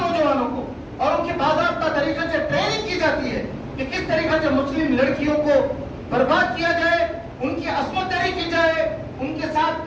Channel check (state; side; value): identical; both; correlation 1.00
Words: کو، اور ان کی باضابطہ طریقے سے ٹریننگ کی جاتی ہے کہ کس طریقے سے مسلم لڑکیوں کو برباد کیا جائے، ان کی عصمت دری کی جائے، ان کے